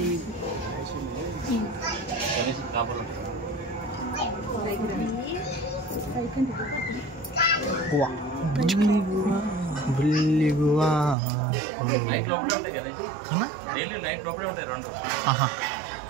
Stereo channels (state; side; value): drops out; left; at 11.2 s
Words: అన్నా డైలీ నైట్ లోపలే ఉంటాయి 2